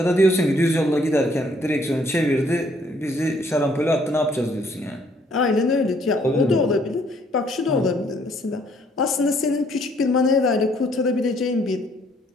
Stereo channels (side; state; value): both; normal; correlation 0.65